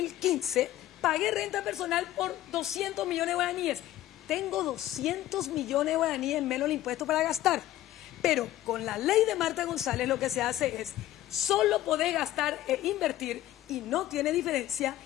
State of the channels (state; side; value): quieter; right; 14.2 dB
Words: pagué renta personal por 200 millones de guaraníes. Tengo 200 millones de guaraníes menos el impuesto para gastar. Pero con la ley de Marta González lo que se hace es, solo podés gastar e invertir, y no tiene diferencia,